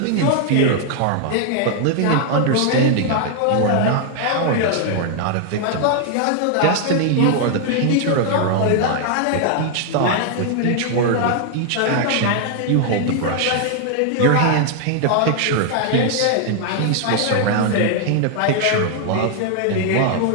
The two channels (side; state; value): both; different; correlation 0.00